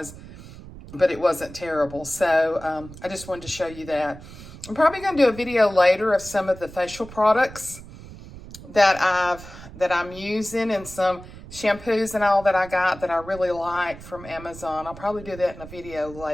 but it wasn't terrible. So I just wanted to show you that. I'm probably going to do a video later of some of the facial products that I'm using, and some shampoos and all that I got that I really like from Amazon. I'll probably do that in a video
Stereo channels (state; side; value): noise; right; rumble, 16 dB below the sound